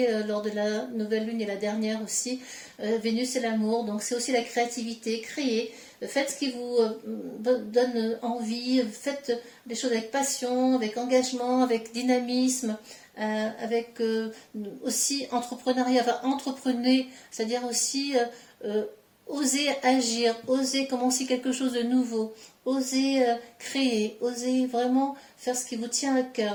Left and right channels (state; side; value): identical; both; correlation 1.00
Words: lors de la nouvelle lune et la dernière aussi. Vénus, c'est l'amour, donc c'est aussi la créativité, créer. Faites ce qui vous donne envie, faites des choses avec passion, avec engagement, avec dynamisme, avec aussi entrepreneuriat, enfin entreprenez, c'est-à-dire aussi oser agir, oser commencer quelque chose de nouveau, oser créer, oser vraiment faire ce qui vous tient à